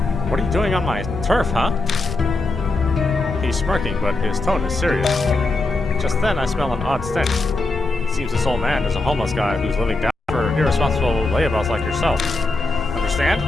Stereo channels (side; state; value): right; quieter; 3.0 dB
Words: What are you doing on my turf, huh? He's smirking, but his tone is serious. Just then, I smell an odd stench. It seems this old man is a homeless guy who's living down for irresponsible layabouts like yourself. Understand?